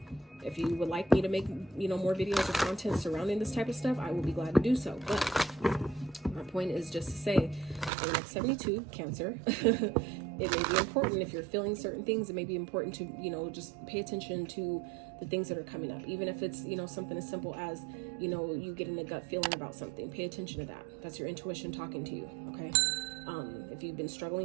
if you would like me to make, more videos or content surrounding this type of stuff, I will be glad to do so. But my point is just to say, for the next 72, Cancer, it may be important if you're feeling certain things. It may be important to, just pay attention to the things that are coming up. Even if it's, something as simple as, you getting a gut feeling about something. Pay attention to that. That's your intuition talking to you, okay? If you've been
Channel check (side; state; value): left; drops out; at 7.9 s